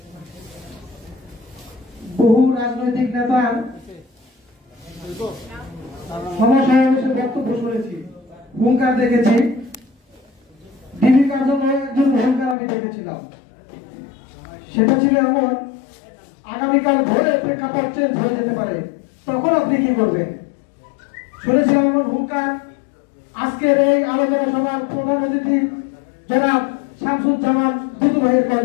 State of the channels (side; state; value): right; drops out; at 12.6 s